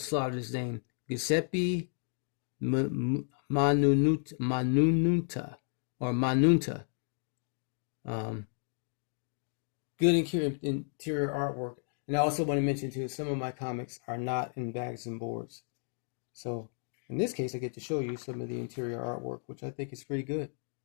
slaughter his name, Giuseppe Manunta. Good interior artwork. And I also want to mention too, some of my comics are not in bags and boards. So in this case, I get to show you some of the interior artwork, which I think is pretty good.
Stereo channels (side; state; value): right; silent; 56 dB below the other